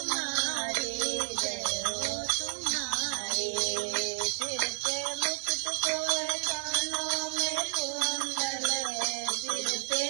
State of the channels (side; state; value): left; silent; digital silence